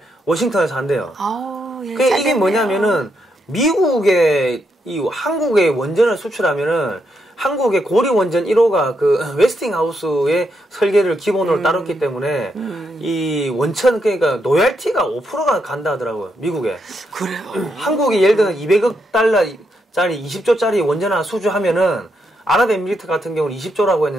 워싱턴에서 한대요. 이게 뭐냐면은 미국의 한국의 원전을 수출하면은 한국의 고리 원전 1호가 그 웨스팅하우스의 설계를 기본으로 따랐기 때문에 이 원천 그러니까 로얄티가 5%가 간다 하더라고요. 미국에. 그래요. 한국이 예를 들면 200억 달러짜리 20조짜리 원전 하나 수주하면은 아랍에미리트 같은 경우는 20조라고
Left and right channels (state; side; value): normal; both; correlation 0.80